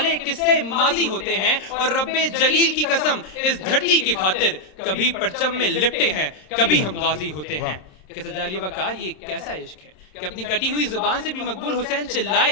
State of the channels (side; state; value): right; late; 27 ms